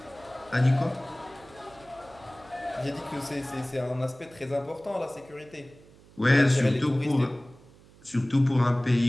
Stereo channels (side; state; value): right; noise; hum, 25 dB below the sound